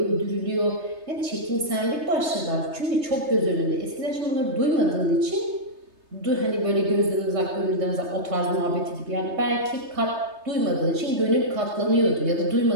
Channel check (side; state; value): left; late; 3.3 ms